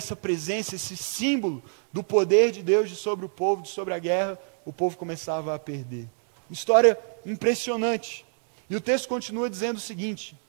presença, esse símbolo do poder de Deus sobre o povo, sobre a guerra, o povo começava a perder. História impressionante. E o texto continua dizendo o seguinte:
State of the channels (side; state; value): left; silent; digital silence